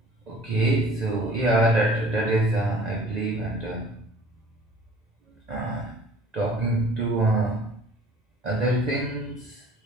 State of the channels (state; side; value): normal; both; correlation 0.50